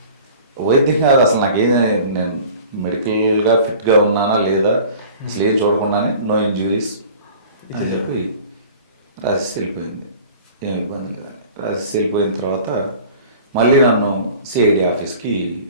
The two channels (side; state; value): both; inverted; correlation -0.45